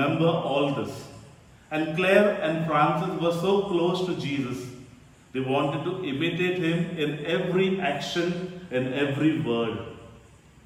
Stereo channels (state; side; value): identical; both; correlation 1.00